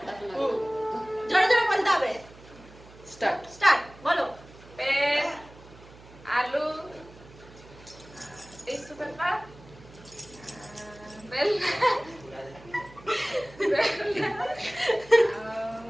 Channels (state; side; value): noise; right; hum, 21 dB below the sound